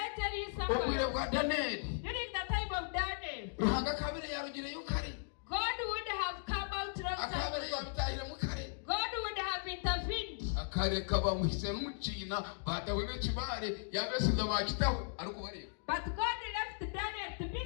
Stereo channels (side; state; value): right; silent; digital silence